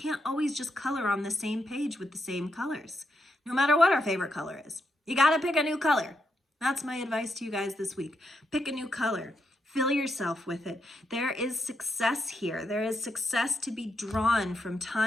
always just color on the same page with the same colors, no matter what our favorite color is. You got to pick a new color. That's my advice to you guys this week. Pick a new color. Fill yourself with it. There is success here. There is success to be drawn from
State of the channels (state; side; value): normal; both; correlation 0.82